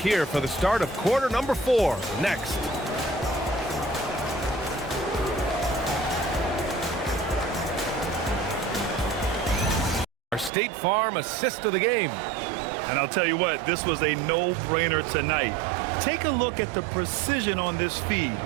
for the start of quarter number 4 next. Our State Farm assist of the game. And I'll tell you what, this was a no-brainer tonight. Take a look at the precision on this feed.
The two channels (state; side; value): drops out; left; at 10.5 s